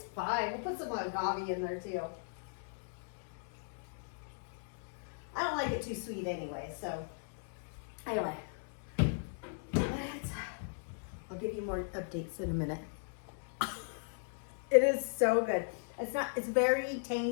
fine. We'll put some agave in there too. I don't like it too sweet anyway, so anyway. I'll give you more updates in a minute. It is so good. It's very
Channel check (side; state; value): right; silent; digital silence